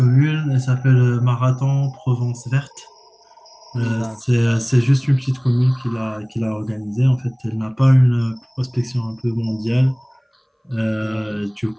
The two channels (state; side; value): identical; both; correlation 1.00